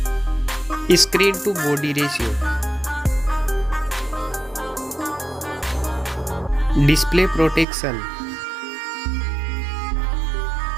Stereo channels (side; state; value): left; drops out; at 7.7 s